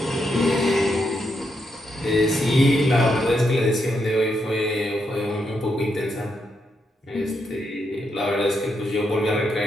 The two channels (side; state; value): both; normal; correlation 0.81